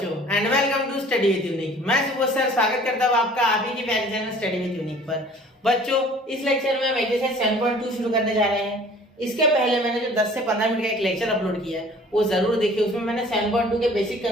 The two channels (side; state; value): both; normal; correlation 0.50